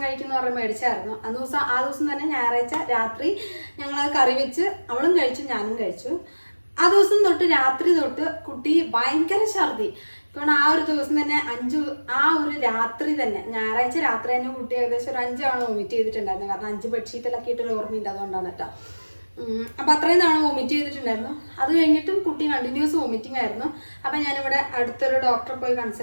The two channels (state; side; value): inverted; both; correlation -1.00